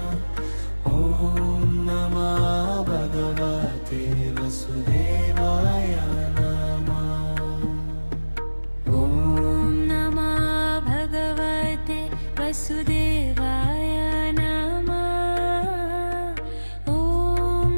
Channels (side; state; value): both; inverted; correlation -1.00